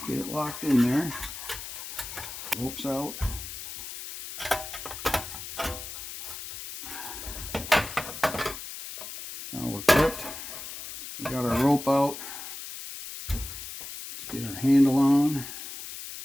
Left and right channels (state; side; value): noise; left; hiss, 9 dB below the sound